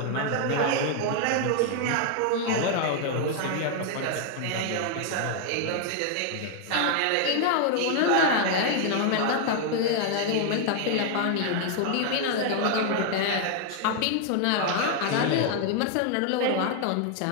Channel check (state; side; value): different; both; correlation 0.00